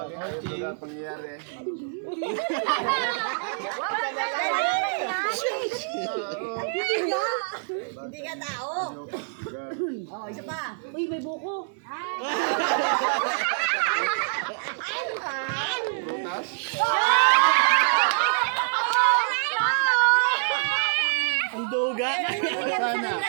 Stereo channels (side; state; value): left; silent; digital silence